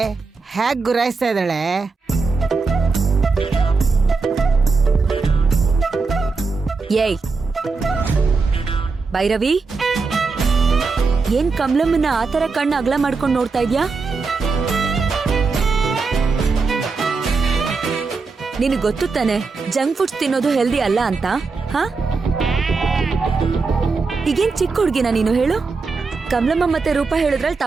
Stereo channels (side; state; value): left; quieter; 4.4 dB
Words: ಹೇಗ್ ಗುರಾಯಿಸ್ತಾ ಇದ್ದಾಳೆ. ಏಯ್ ಭೈರವಿ, ಏನ್ ಕಮಲಮ್ಮನ ಆತರ ಕಣ್ಣು ಅಗಲ ಮಾಡ್ಕೊಂಡು ನೋಡ್ತಾ ಇದ್ಯಾ? ನಿನಗೆ ಗೊತ್ತು ತಾನೆ ಜಂಕ್ ಫುಡ್ಸ್ ತಿನ್ನೋದು ಹೆಲ್ದಿ ಅಲ್ಲ ಅಂತ. ಹಾ, ಈಗೇನ್ ಚಿಕ್ಕ ಹುಡ್ಗಿನ ನೀನು ಹೇಳು? ಕಮಲಮ್ಮ ಮತ್ತೆ ರೂಪ ಹೇಳಿದ್ರಲ್ಲಿ